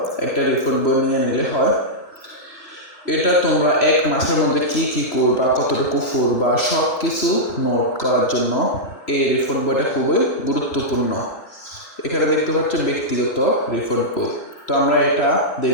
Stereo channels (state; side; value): late; right; 3.0 ms